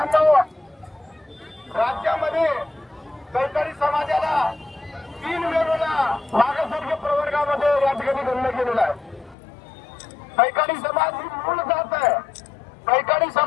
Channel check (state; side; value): drops out; right; at 9.3 s